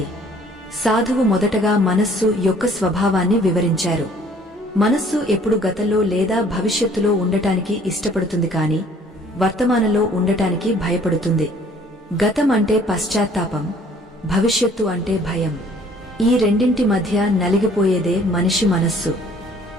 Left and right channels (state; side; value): normal; both; correlation 0.56